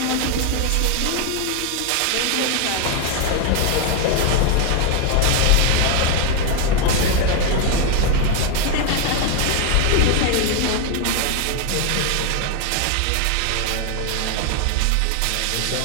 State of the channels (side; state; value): both; different; correlation 0.01